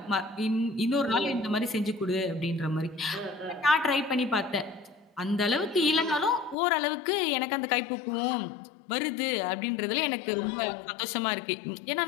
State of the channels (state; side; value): drops out; right; at 6.6 s